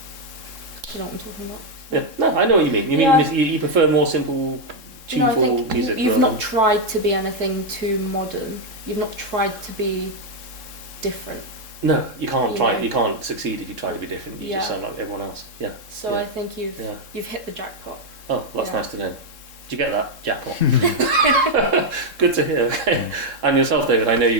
know what I'm talking about. Yeah. No, I know what you mean. You mean you prefer more simple, tuneful music. You've not tried to be anything too modern. You've not tried to be different. No, you can't try. You can't succeed if you try to be different. You just sound like everyone else. Yeah. So I think you've hit the jackpot. Oh, that's nice to know. Did you get that? Jackpot. Good to hear. Okay. And yourself, David, I know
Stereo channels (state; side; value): late; left; 3.7 ms